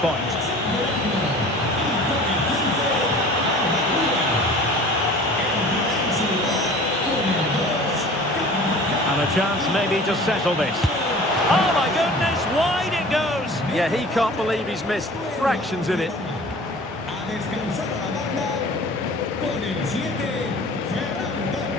And a chance maybe to settle this. Oh my goodness, wide it goes! Yeah, he can't believe he's missed fractions in it.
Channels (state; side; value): normal; both; correlation 0.43